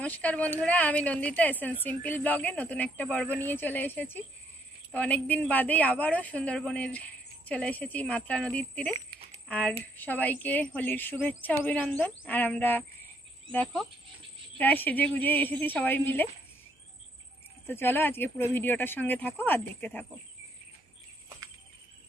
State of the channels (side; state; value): both; normal; correlation 0.70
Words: নমস্কার বন্ধুরা, আমি নন্দিতা এসএন সিম্পল ব্লগে নতুন একটা পর্ব নিয়ে চলে এসেছি। তো অনেকদিন বাদেই আবারও সুন্দরবনের চলে এসেছি মাতলা নদীর তীরে। আর সবাইকে হোলির শুভেচ্ছা অভিনন্দন। আর আমরা দেখো প্রায় সেজে গুজে এসেছি সবাই মিলে। তো চলো আজকে পুরো ভিডিওটার সঙ্গে থাকো আর দেখতে থাকো।